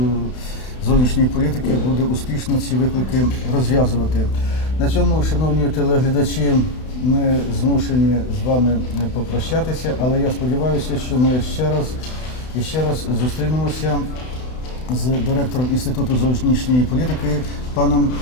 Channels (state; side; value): late; right; 32 ms